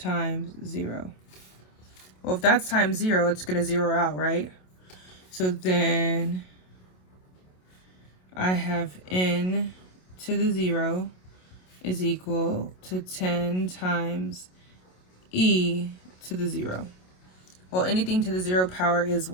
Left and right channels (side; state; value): right; late; 27 ms